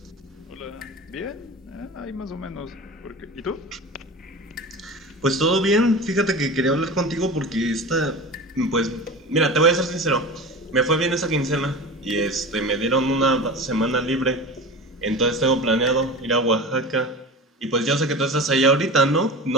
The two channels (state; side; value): normal; both; correlation 0.31